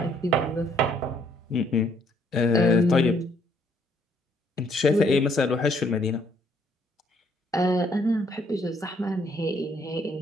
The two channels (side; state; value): both; normal; correlation 0.68